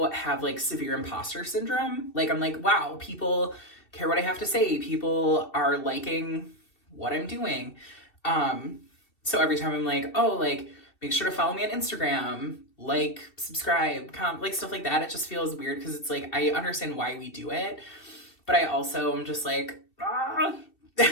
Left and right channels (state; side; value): late; right; 2.7 ms